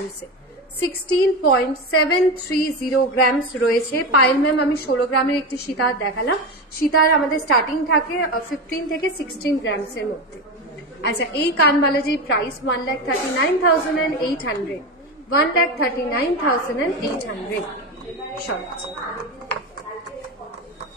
16.730 গ্রামস রয়েছে। পায়েল ম্যাম আমি 16 গ্রামের একটি সীতাহার দেখালাম, সীতাহার আমাদের স্টার্টিং থাকে 15 থেকে 16 গ্রামসের মধ্যে। আচ্ছা এই কানবালাজির প্রাইস 1,39,800, 1,39,800 সব।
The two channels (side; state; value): both; normal; correlation 0.19